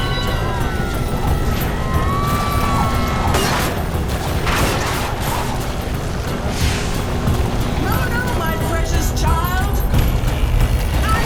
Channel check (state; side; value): identical; both; correlation 1.00